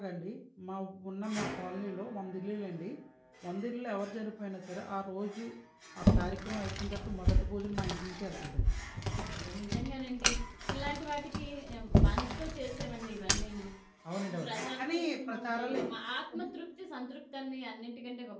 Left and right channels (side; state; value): both; identical; correlation 1.00